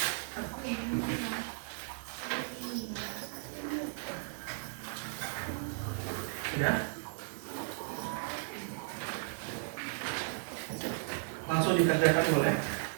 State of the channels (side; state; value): left; silent; digital silence